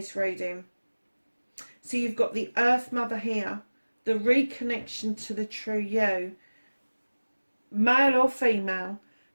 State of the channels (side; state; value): both; inverted; correlation -1.00